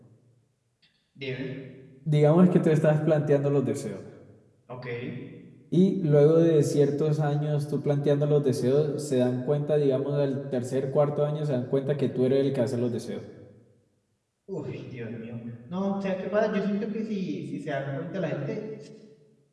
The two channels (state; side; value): identical; both; correlation 1.00